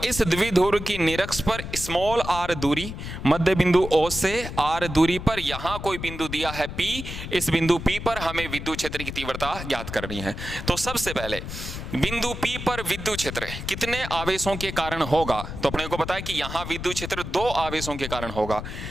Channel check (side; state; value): left; noise; rumble, 8 dB below the sound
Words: इस द्विध्रुव की निरक्ष पर स्मॉल r दूरी, मध्य बिंदु O से r दूरी पर यहां कोई बिंदु दिया है P, इस बिंदु P पर हमें विद्युत क्षेत्र की तीव्रता ज्ञात करनी है। तो सबसे पहले बिंदु P पर विद्युत क्षेत्र कितने आवेशों के कारण होगा, तो अपने को पता है कि यहां विद्युत क्षेत्र 2 आवेशों के कारण होगा।